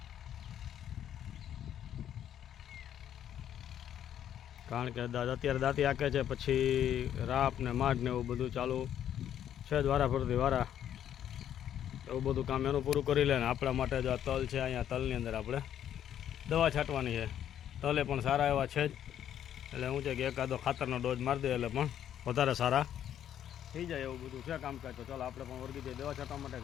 કારણ કે અત્યારે દાંતી આંકે છે, પછી રાપ ને માઢ ને એવું બધું ચાલુ છે જ વારા ફરતી વારા, એવું બધું કામ એનું પૂરું કરી લે ને આપણા માટે જો આ તલ છે, અહીંયા તલની અંદર આપણે દવા છાંટવાની છે। તલે પણ સારા એવા છે જ, એટલે શું છે કે એકાદો ખાતરનો ડોઝ મારી દે એટલે પણ વધારે સારા થઈ જાય એવું બધું છે કામકાજ। તો ચાલો આપણે પણ વળગી જઈએ દવા છાંટવા માટે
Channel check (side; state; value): right; quieter; 10.3 dB